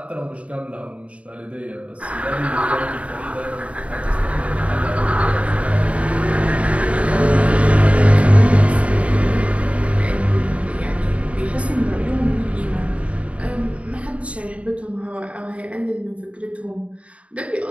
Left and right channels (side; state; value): left; late; 0.065 ms